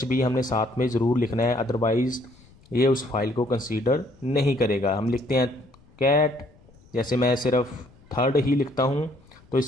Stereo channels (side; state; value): left; noise; rumble, 27 dB below the sound